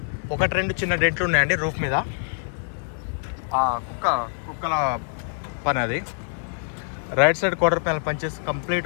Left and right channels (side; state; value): right; silent; digital silence